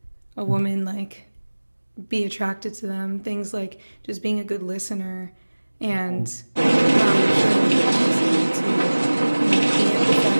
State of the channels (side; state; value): both; inverted; correlation -1.00